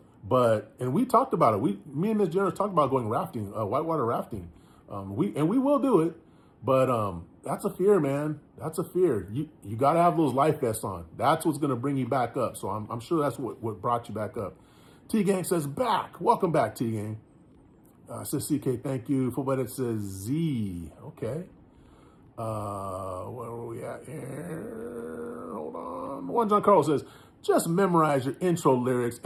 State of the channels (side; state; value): both; identical; correlation 1.00